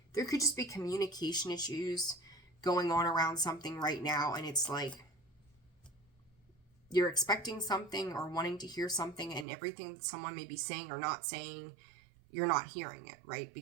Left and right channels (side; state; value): left; drops out; at 9.5 s